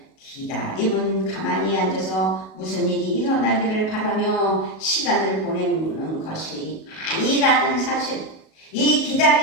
기다림은 가만히 앉아서 무슨 일이 일어나기를 바라며 시간을 보내는 것이 아니라는 사실. 이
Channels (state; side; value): late; right; 37 ms